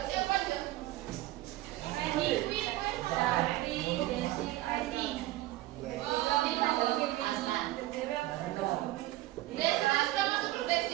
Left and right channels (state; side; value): quieter; left; 16.8 dB